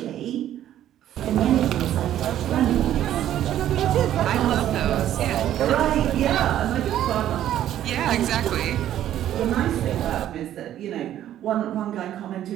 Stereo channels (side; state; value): left; quieter; 11.8 dB